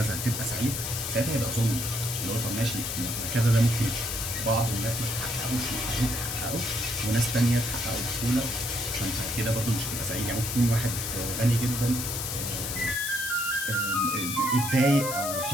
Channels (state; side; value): noise; left; hiss, 4 dB below the sound